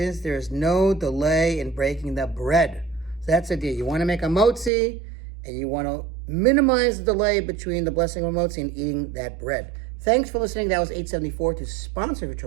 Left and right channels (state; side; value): drops out; left; at 4.7 s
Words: there is no delay in breaking the bread. So that's the idea. You want to make a motzi, and you want to minimize the delay between the blessing of motzi and eating that bread. Thanks for listening. That was 874 to sponsor